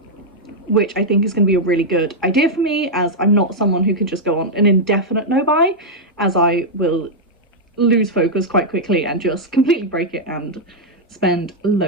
Which I think is going to be a really good idea for me, as I'm not someone who can just go on an indefinite no buy, as I will lose focus quite quickly and just completely break it and spend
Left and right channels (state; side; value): normal; both; correlation -0.04